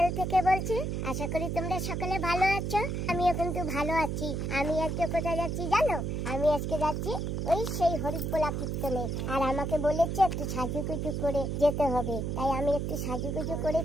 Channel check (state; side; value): noise; right; hum, 2 dB below the sound